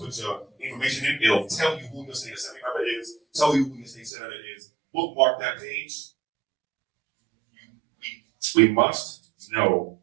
your information in. It'll tell you who your state assembly member is, tell you who your state senator is. Bookmark that page. We must know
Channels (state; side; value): drops out; left; at 4.1 s